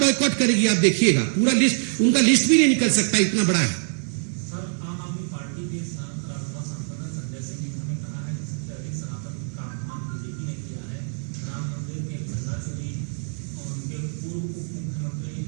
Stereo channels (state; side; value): silent; left; digital silence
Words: करेगी, आप देखिएगा। पूरा लिस्ट, उनका लिस्ट भी नहीं निकल सकता, इतना बड़ा है।